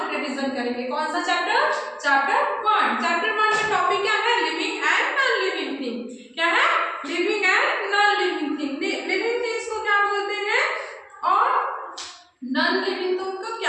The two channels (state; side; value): identical; both; correlation 1.00